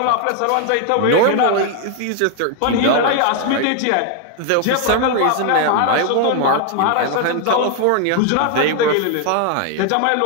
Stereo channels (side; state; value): both; different; correlation 0.00